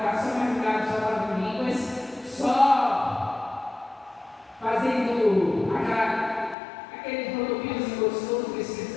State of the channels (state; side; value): drops out; right; at 6.6 s